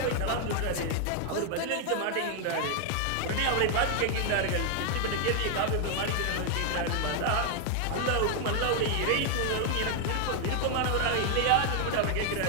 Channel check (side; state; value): both; different; correlation 0.00